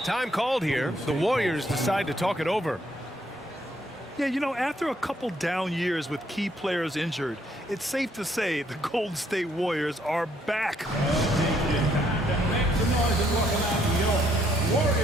Time called here. The Warriors decide to talk it over. Yeah, you know, after a couple down years with key players injured, it's safe to say the Golden State Warriors are back. Make some noise and welcome out your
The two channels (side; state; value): both; normal; correlation 0.69